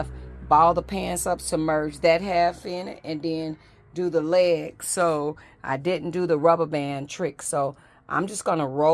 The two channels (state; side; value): identical; both; correlation 1.00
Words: ball the pants up, submerge that half in it, and then do the legs. So I didn't do the rubber band trick. So I'm just going to